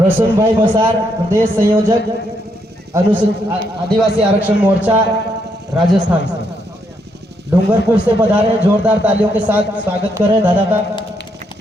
भाई मसार, प्रदेश संयोजक आदिवासी आरक्षण मोर्चा राजस्थान से, डूंगरपुर से पधारे। जोरदार तालियों के साथ स्वागत करें दादा का।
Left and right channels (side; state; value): both; normal; correlation 0.76